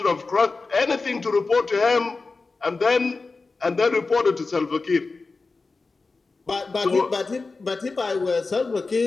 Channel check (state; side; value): quieter; right; 3.9 dB